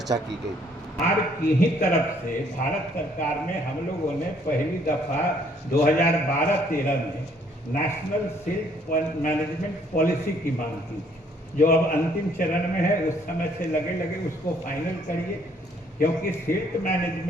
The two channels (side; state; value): both; normal; correlation 0.64